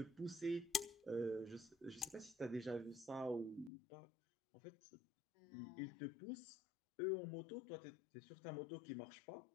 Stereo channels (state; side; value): drops out; right; at 3.7 s